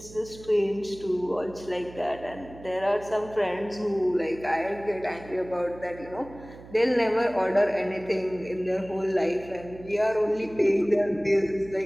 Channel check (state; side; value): noise; right; hum, 18 dB below the sound